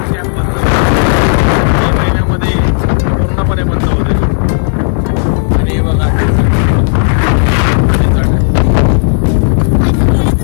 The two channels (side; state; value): right; silent; 75 dB below the other